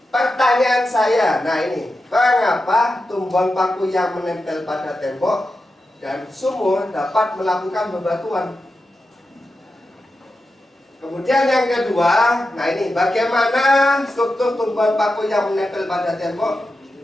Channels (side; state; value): both; normal; correlation 0.90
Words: pertanyaan saya, nah ini, mengapa tumbuhan paku yang menempel pada tembok dan sumur dapat melakukan bebatuan? Kemudian yang kedua, nah ini, bagaimana struktur tumbuhan paku yang menempel pada tembok